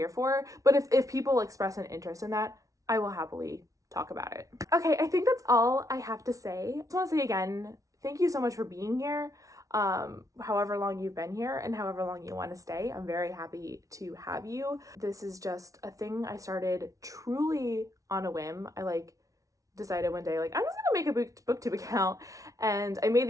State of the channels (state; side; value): late; left; 0.17 ms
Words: for. But if people express an interest in that, I will happily talk about it. Okay, I think that's all I have to say. I just want to say again, thank you so much for being here. However long you've been here and however long you want to stay, I'm very happy to have you. This is just a thing I started truly on a whim. I like decided one day like I'm just gonna make a booktube account, and I made